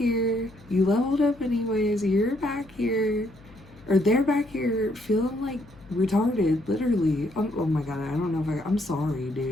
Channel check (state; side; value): noise; left; hum, 23 dB below the sound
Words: You leveled up anyways. You're back here, or they're back here feeling like retarded, literally. Oh my god, I don't know if I'm sorry,